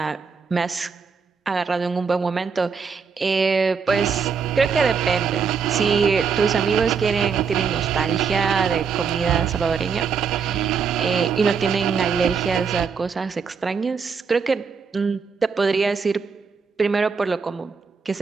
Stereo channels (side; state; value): left; quieter; 5.8 dB